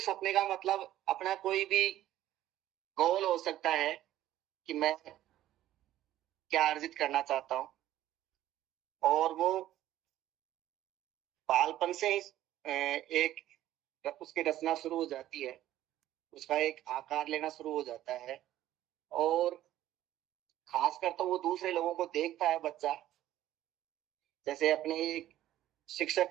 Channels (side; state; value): left; quieter; 13.5 dB